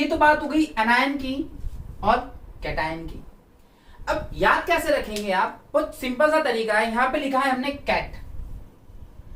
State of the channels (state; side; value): identical; both; correlation 1.00